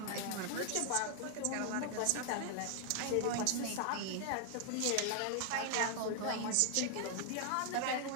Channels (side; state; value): both; different; correlation 0.00